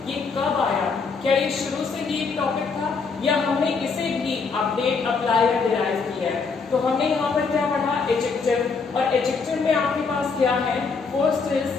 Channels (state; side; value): quieter; right; 4.9 dB